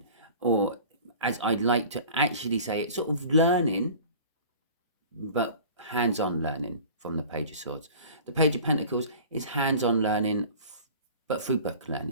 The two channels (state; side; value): inverted; both; correlation -0.42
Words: or as I'd like to actually say it, sort of learning, but hands-on learning from the Page of Swords. The Page of Pentacles is hands-on learning, but through book